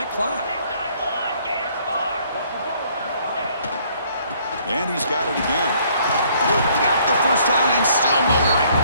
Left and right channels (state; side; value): inverted; both; correlation -0.63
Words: clock. And he's got it again. Got the first down and still motoring.